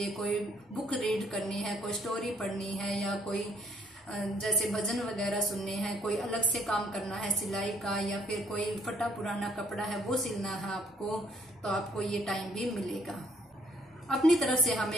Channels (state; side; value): normal; both; correlation 0.63